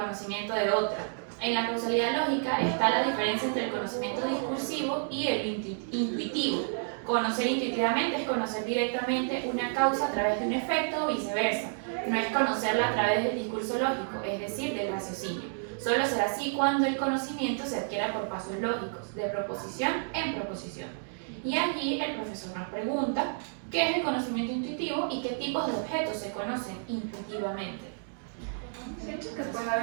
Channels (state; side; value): silent; left; digital silence